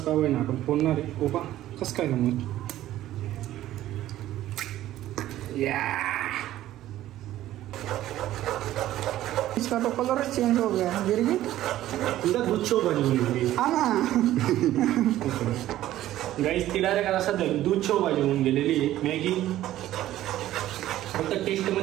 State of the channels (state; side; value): quieter; left; 13.9 dB